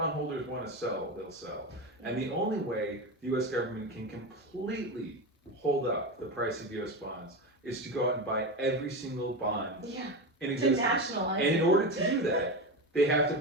want to sell, they'll sell. And the only way the U.S. government can completely hold up the price of U.S. bonds is to go out and buy every single bond in existence. To nationalize. And in order to do that, they have to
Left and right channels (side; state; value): both; normal; correlation 0.20